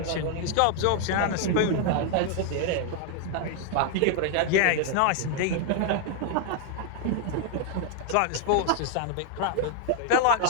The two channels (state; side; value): different; both; correlation 0.00